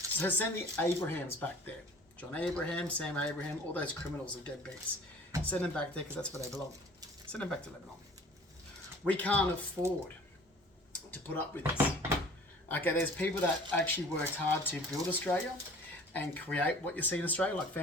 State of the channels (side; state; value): both; normal; correlation 0.47